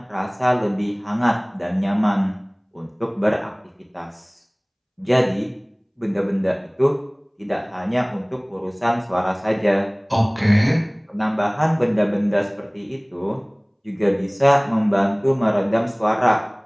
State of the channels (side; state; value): both; identical; correlation 1.00